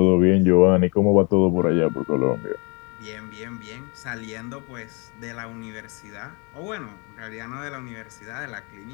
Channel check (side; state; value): right; quieter; 31.7 dB